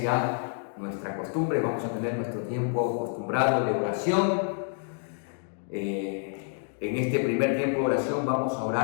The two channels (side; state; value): right; silent; 58 dB below the other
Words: ya nuestra costumbre, vamos a tener nuestro tiempo acostumbrado de oración. En este primer tiempo de oración vamos a